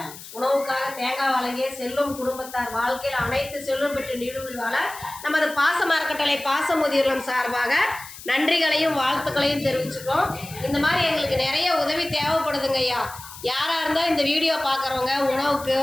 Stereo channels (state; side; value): noise; left; hiss, 15 dB below the sound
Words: உணவுக்காக தேங்காய் வழங்கிய செல்வம் குடும்பத்தார் வாழ்க்கையில் அனைத்து செல்வம் பெற்று நீடுழி வாழ நமது பாசமா இருக்கட்டளை பாச முதியோர்களும் சார்பாக நன்றிகளையும் வாழ்த்துக்களையும் தெரிவிச்சுக்கிறோம். இந்த மாதிரி எங்களுக்கு நிறைய உதவி தேவைப்படுதுங்க ஐயா. யாராக இருந்தாலும் இந்த வீடியோ பார்க்குறவங்க உணவுக்கு